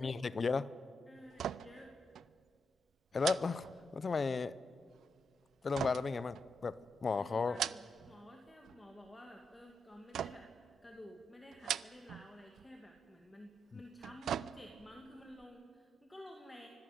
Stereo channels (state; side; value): normal; both; correlation 0.83